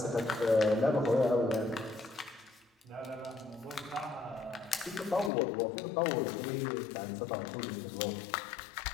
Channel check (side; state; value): right; drops out; at 5.3 s